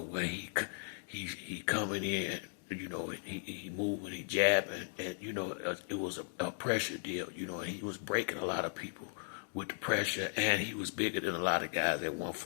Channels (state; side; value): silent; right; digital silence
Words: where he coming in, you know, he moving, he jabbing, and you know, it was a pressure deal, you know, and he was breaking a lot of people with the pressure, and he was bigger than a lot of guys at